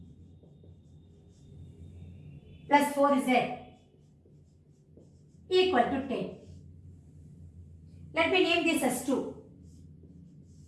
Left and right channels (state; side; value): identical; both; correlation 1.00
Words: plus 4z equal to 10. Let me name this as 2.